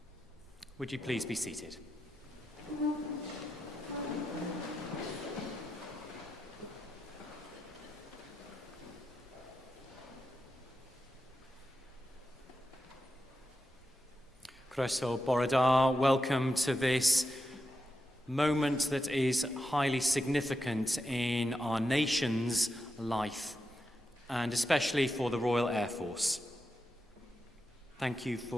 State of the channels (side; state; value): both; normal; correlation 0.88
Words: Would you please be seated? Croeso bore da, welcome to this moment that is highly significant in our nation's life, and especially for the Royal Air Force. Thank you